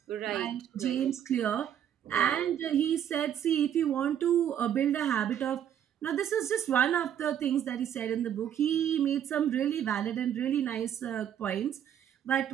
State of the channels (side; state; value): left; quieter; 9.8 dB